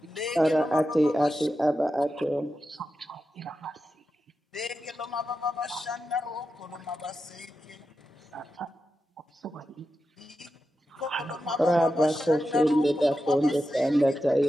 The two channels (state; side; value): normal; both; correlation 0.90